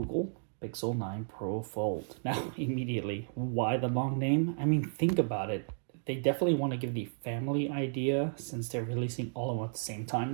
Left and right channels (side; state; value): left; silent; digital silence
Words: Pixel 9 Pro Fold. Now, immediately, why the long name? I mean, think about it. They definitely want to give the family idea since they're releasing all of them at the same time